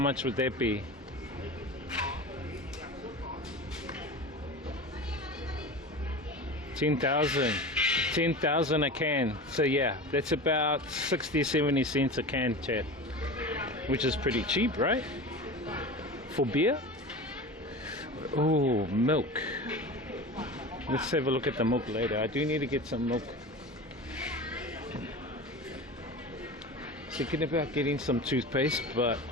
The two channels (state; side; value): normal; both; correlation 0.31